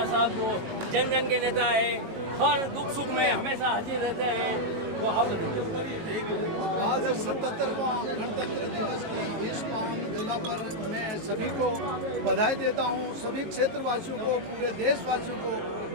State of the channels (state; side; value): late; left; 18 ms